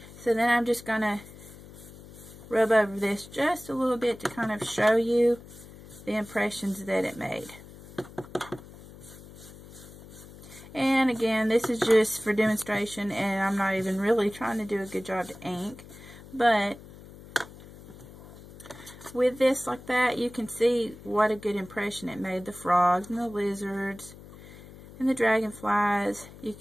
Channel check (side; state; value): left; noise; hum, 18 dB below the sound